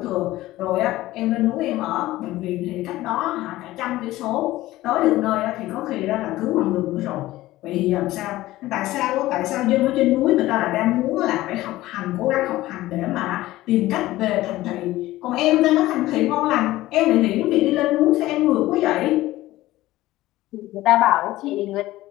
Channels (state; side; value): quieter; right; 16.7 dB